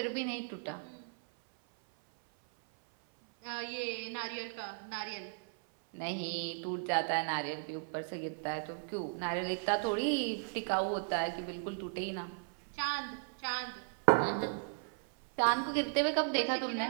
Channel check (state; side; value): silent; left; 54 dB below the other